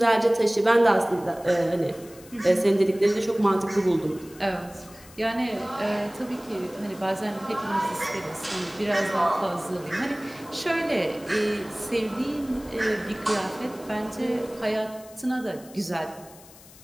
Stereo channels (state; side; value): noise; left; hiss, 22 dB below the sound